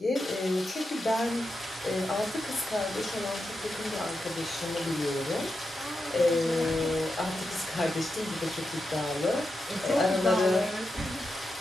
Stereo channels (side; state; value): both; normal; correlation 0.88